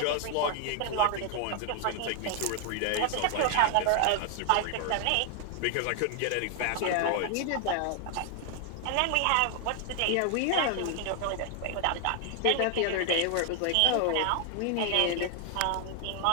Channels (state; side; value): different; both; correlation 0.00